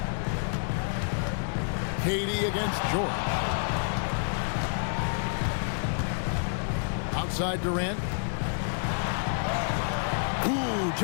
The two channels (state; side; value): silent; right; digital silence